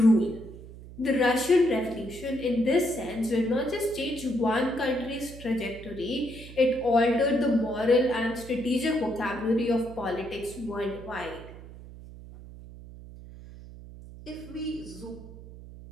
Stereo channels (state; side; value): noise; right; hum, 16 dB below the sound